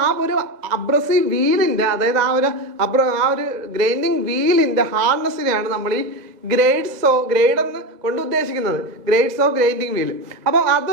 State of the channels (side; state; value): left; late; 2.0 ms